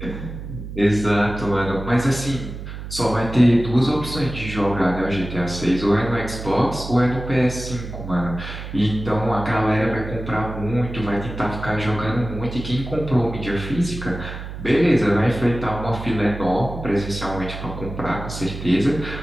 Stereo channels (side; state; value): right; noise; hum, 9 dB below the sound